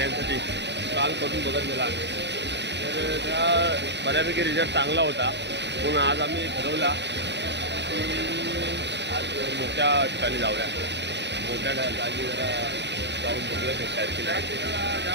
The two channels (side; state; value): left; late; 0.51 ms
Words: काल करून बघितलेला, तर त्या बऱ्यापैकी रिझल्ट चांगला होता। म्हणून आज आम्ही ठरवला की आज मोठ्या ठिकाणी जाऊया, मोठ्या ठिकाणी जरा जाऊन बघूया भेटतात की नाही। ज्या